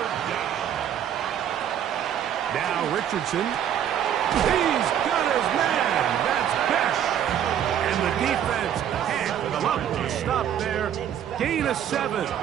down. Now Richardson. He's got his man. That's Besh. And the defense can't come up with a stop there. Gain of 7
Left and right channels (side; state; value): left; quieter; 9.8 dB